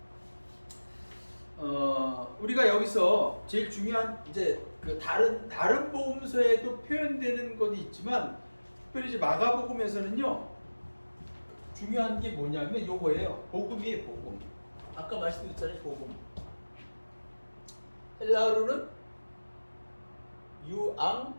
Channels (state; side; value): inverted; both; correlation -1.00